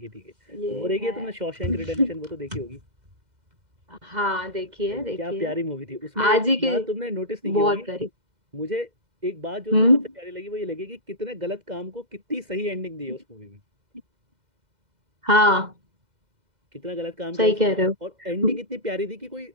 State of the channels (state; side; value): late; left; 2.0 ms